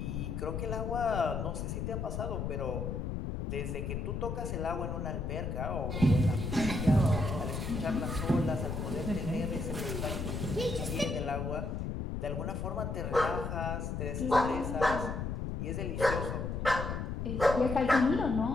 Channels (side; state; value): left; noise; rumble, 3 dB below the sound